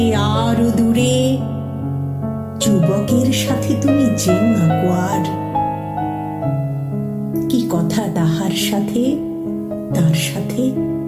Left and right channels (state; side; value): identical; both; correlation 1.00